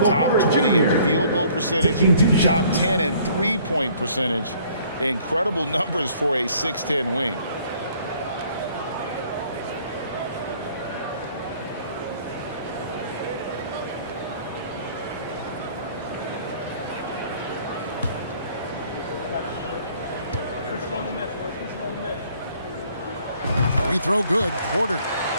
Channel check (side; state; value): both; inverted; correlation -0.58